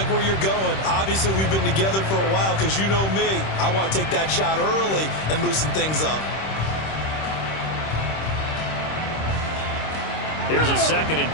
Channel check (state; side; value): late; right; 26 ms